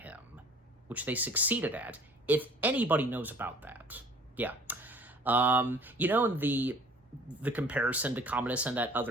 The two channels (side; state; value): both; normal; correlation 0.51